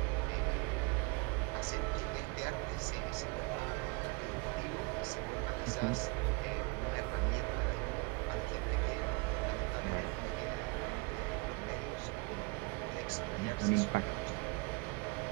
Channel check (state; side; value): quieter; left; 28.9 dB